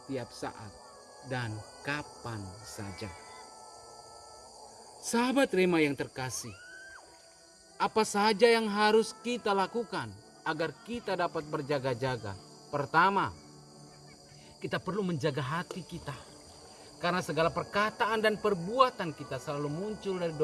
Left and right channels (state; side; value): identical; both; correlation 1.00